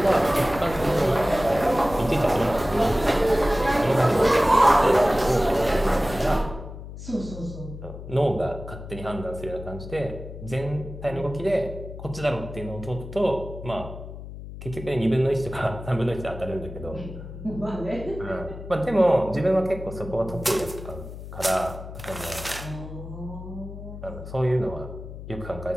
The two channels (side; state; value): left; noise; hum, 12 dB below the sound